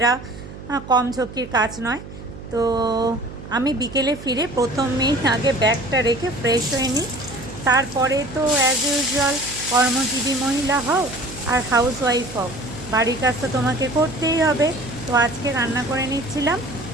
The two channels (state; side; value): noise; right; hum, 14 dB below the sound